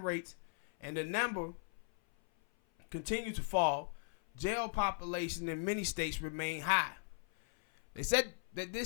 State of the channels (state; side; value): silent; right; 52 dB below the other